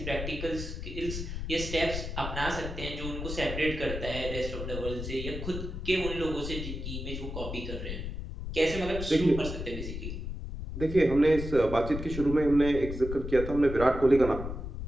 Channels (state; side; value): noise; left; rumble, 6 dB below the sound